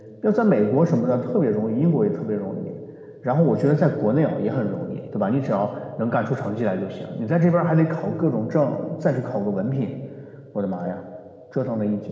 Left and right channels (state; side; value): identical; both; correlation 1.00